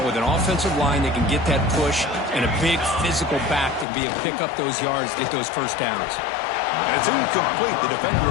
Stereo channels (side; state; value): right; drops out; at 3.9 s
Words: with an offensive line that can get that push and a big physical back to be able to pick up those yards, get those first downs. And it's incomplete. The defender